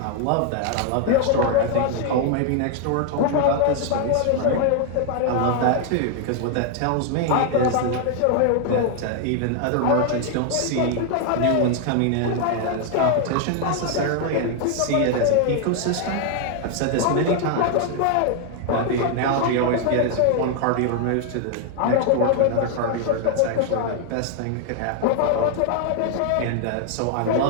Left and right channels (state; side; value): different; both; correlation 0.00